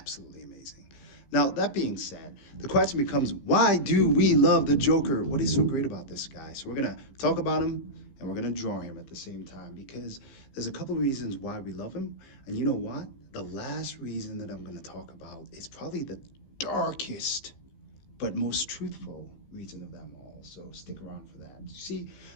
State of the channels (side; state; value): right; late; 15 ms